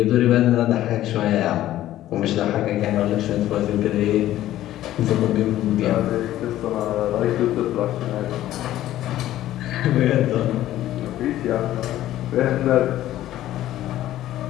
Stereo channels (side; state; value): right; quieter; 13.7 dB